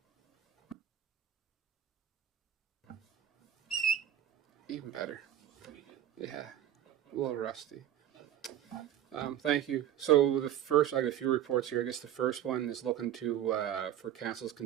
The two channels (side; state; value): left; quieter; 11.1 dB